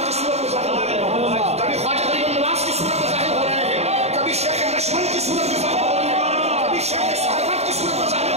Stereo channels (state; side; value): late; left; 0.31 ms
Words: کی صورت میں ظاہر ہوئے.